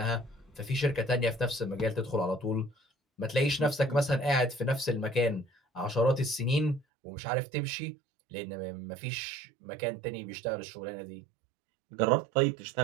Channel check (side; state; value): left; drops out; at 6.9 s